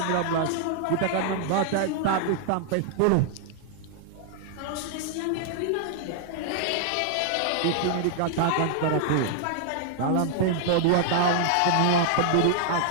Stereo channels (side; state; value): both; different; correlation 0.00